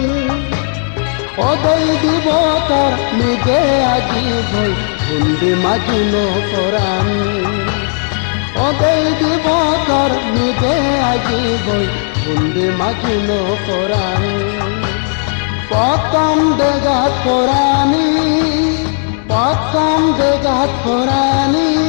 ওদেই দিবতর নিজে আজি বই কুন্দি মাজুলো কোরআন ওদেই দিবতর নিজে আজি বই কুন্দি মাজুলো কোরআন পতম দেগাত কোরআনি পতম দেগাত কোরআনি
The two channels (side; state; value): right; silent; digital silence